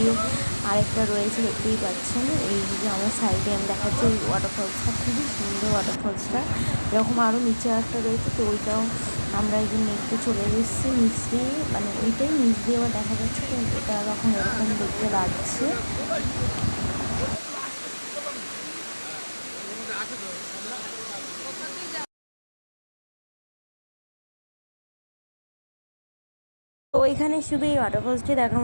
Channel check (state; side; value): inverted; both; correlation -1.00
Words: আরেকটা রয়েছে, দেখতেই পাচ্ছেন। এই যে আমার সাইডে আমি দেখাচ্ছি ওই ওয়াটারফলসটা খুবই সুন্দর। ওয়াটারফলসটা এরকম আরও নিচে একটা রয়েছে, তো ওইটাও আমরা এই যে দেখতে চলে এসেছি নিচ দিয়ে, মানে ওইটাই নিচ দিয়ে আবার দেখা যাচ্ছে। তো এটা এখন এরকম দেখতে লাগছে। তো এখানে শুধু এই ওয়াটারফলসটি দেখার